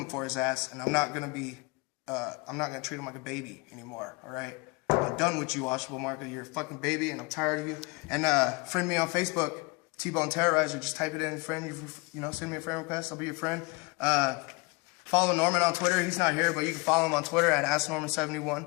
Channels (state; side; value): quieter; right; 27.7 dB